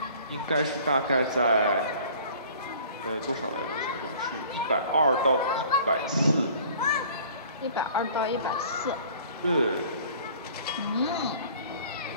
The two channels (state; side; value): inverted; both; correlation -0.50